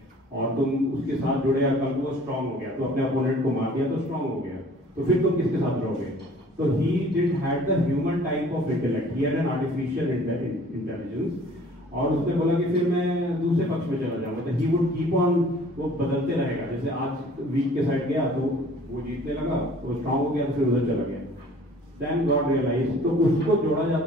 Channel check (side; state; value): both; normal; correlation 0.52